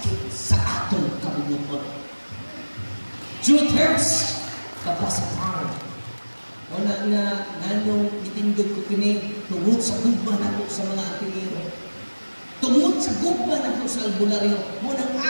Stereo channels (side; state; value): both; inverted; correlation -1.00